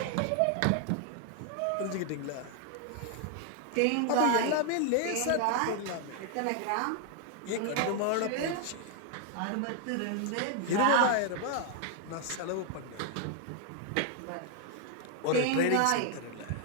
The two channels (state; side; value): different; both; correlation 0.00